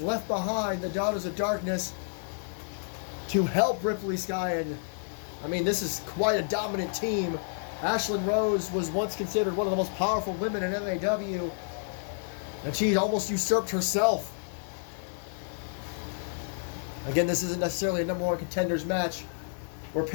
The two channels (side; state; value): right; silent; 58 dB below the other